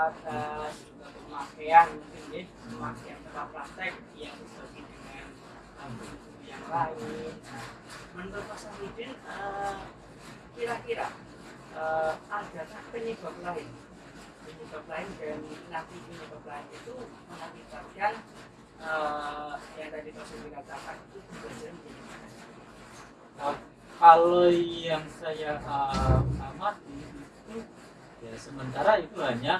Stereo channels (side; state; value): both; identical; correlation 1.00